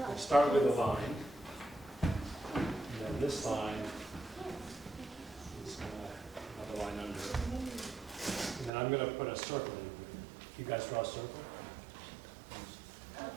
start with a line, and then this line is another line under it. And then I'm going to put a circle in. You guys draw a circle?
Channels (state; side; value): drops out; left; at 8.7 s